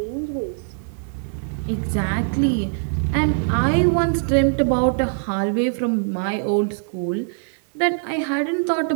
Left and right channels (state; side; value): silent; left; 64 dB below the other